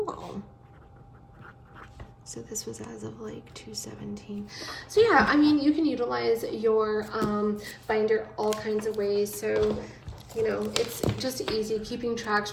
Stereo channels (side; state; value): both; identical; correlation 1.00